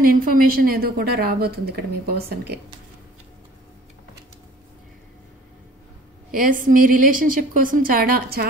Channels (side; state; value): both; normal; correlation 0.50